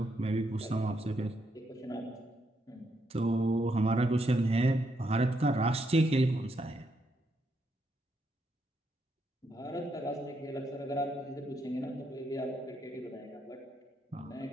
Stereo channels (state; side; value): normal; both; correlation 0.78